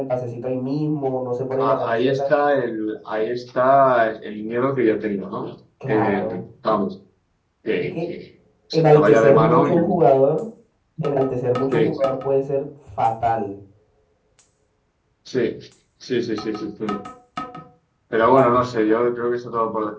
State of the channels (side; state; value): both; identical; correlation 1.00